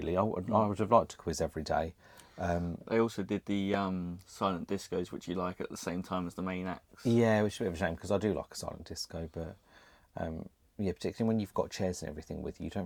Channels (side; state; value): both; identical; correlation 1.00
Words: I would have liked to quiz every day. They also did the silent discos, which you like, at the same time as the main acts. Yeah, which is a bit of a shame, because I do like a silent disco, but yeah, particularly when you've got chairs and everything with you, you